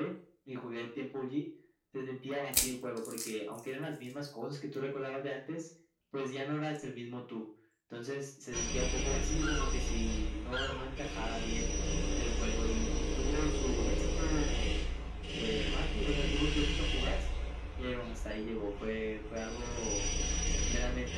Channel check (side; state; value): both; identical; correlation 1.00